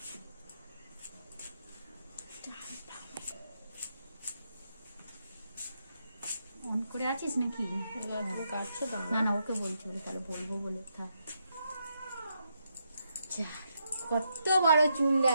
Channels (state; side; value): inverted; both; correlation -0.80